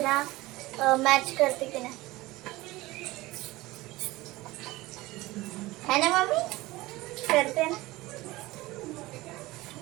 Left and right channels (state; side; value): quieter; left; 19.6 dB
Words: मॅच करते की नाही है ना मम्मी करते ना